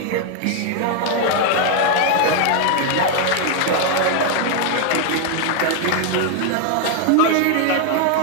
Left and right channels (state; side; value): different; both; correlation 0.00